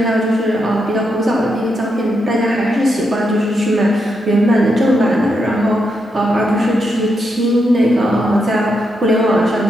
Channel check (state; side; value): normal; both; correlation 0.82